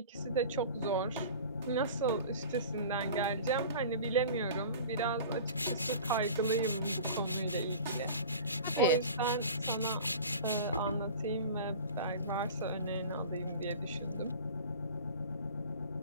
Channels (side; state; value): both; inverted; correlation -0.39